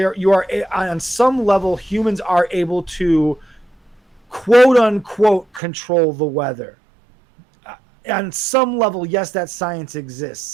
are on some level, humans are able to quote unquote control the weather. On some level, yes, that science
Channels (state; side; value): drops out; left; at 5.6 s